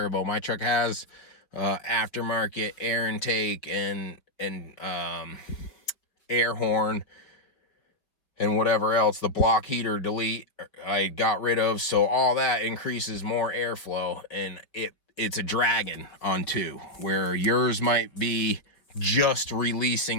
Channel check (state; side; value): late; right; 4.9 ms